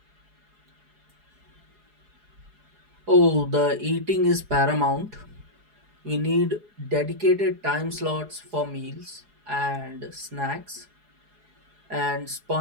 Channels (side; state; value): left; late; 4.8 ms